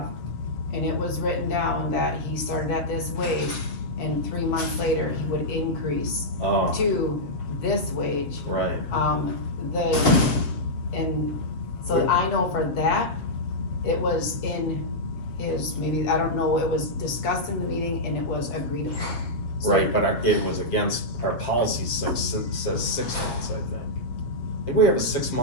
and it was written down that he started at this wage, and 3 months later, he would increase Oh, to this wage. right, And so I know for that, it was in his, maybe, I don't know, it was discussed in the meeting and it was agreed upon. So- right, but it was against, our policy says 6 months, I think. I think we have a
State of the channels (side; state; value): right; late; 7.6 ms